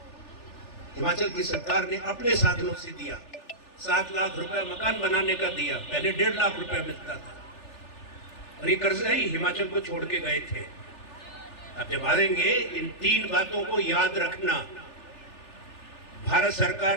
हिमाचल की सरकार ने अपने साधनों से दिया। 7 लाख रुपए मकान बनाने का दिया, पहले 1.5 लाख रुपए मिलता था। और ये कर्जा ही हिमाचल को छोड़ के गए थे। अब जब आएंगे, इन 3 बातों को याद रखना। भारत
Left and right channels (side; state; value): right; late; 3.4 ms